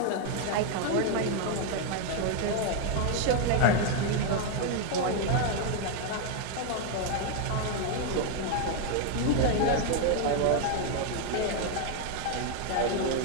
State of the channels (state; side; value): different; both; correlation 0.00